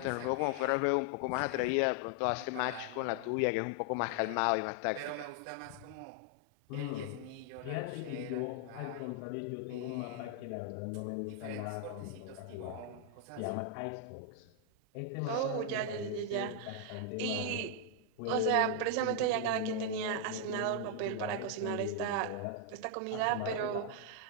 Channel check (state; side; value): different; both; correlation 0.00